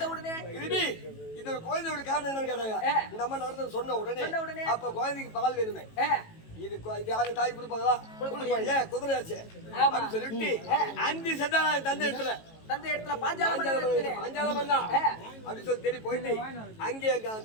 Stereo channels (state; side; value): late; right; 18 ms